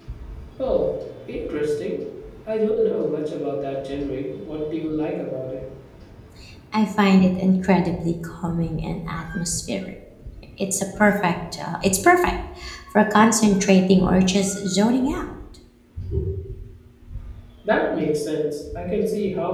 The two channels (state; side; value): identical; both; correlation 1.00